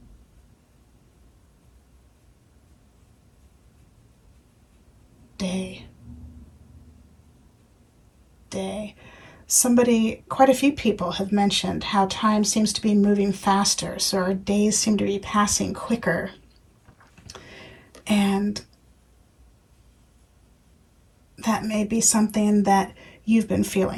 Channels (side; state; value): both; identical; correlation 1.00